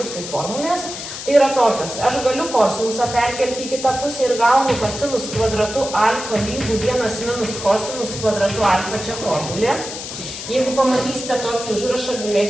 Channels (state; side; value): noise; left; hiss, 8 dB below the sound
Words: kaip formulės. Tai yra tokios, aš galiu kosinusą perkelti į kitą pusę ir gaunu, kad sinus kvadratu alfa lygų 1 minus kosinus kvadratu alfa čia formulė. Jeigu pamatysite tokį užrašą,